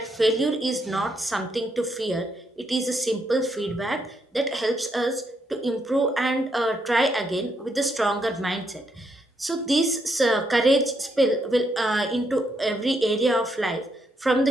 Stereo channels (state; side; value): normal; both; correlation 0.77